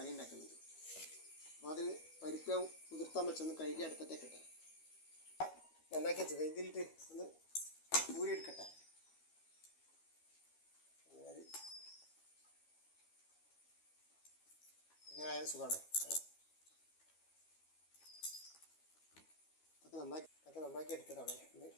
ഉണ്ടാക്കുന്നുണ്ട്. അപ്പോൾ അതിന് പരിപ്പ് കുതിർത്താൻ വെച്ചൊന്ന് കഴുകി അടുപ്പത്തേക്ക് ഇട്ടെ നന്നാക്കി വെച്ചത് ഇതിലിട്ട് ഒന്ന് ഊരിയെടുക്കട്ടെ. ഇങ്ങനെ ആയാലും സുഖമാണ്. അതൊക്കെ നന്നാക്കി എടുത്തതാണ്. ഒന്ന്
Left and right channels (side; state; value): right; late; 12 ms